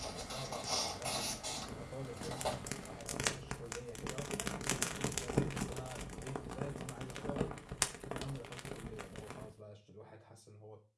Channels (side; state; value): both; identical; correlation 1.00